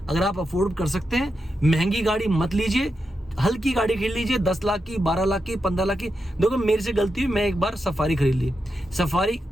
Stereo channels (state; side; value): normal; both; correlation 0.87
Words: आप अफोर्ड कर सकते हैं, महंगी गाड़ी मत लीजिए, हल्की गाड़ी खरीद लीजिए, 10 लाख की, 12 लाख की, 15 लाख की। देखो मेरे से गलती हुई, मैं एक बार सफारी खरीद ली। सफारी